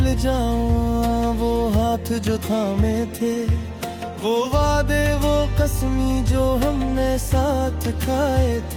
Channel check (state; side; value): identical; both; correlation 1.00